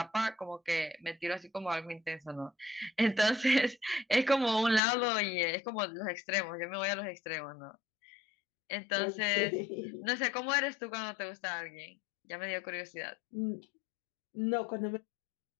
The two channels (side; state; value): right; drops out; at 4.8 s